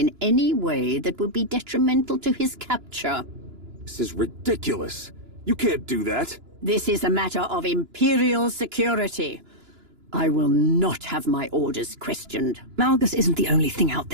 any way that would be detrimental to his capture. This is ridiculous. You can't do that. This is a matter of Imperial security. I will not have my orders questioned. Malgus isn't the only thing out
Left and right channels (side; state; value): left; late; 2.9 ms